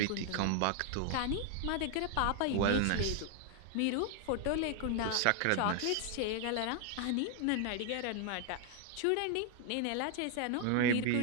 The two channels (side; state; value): both; different; correlation 0.00